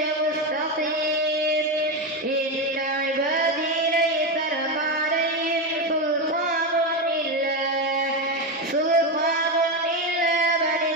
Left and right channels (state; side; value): normal; both; correlation 0.12